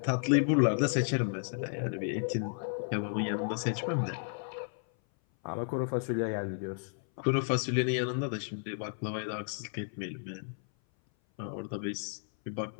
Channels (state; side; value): silent; right; 56 dB below the other